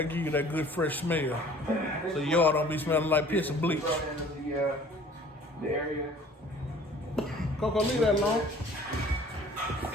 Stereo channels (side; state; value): both; normal; correlation 0.51